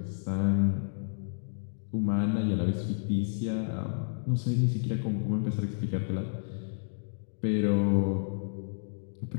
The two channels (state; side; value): silent; right; digital silence